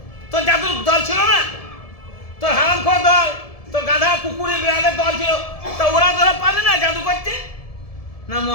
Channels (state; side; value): late; right; 1.7 ms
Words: তোর জাদুর দল ছিল না? তোর হারামখোর দল, তোর গাধা কুকুরে বিড়ালের দল ছিল, তা ওরা পারলে না জাদু করতে? না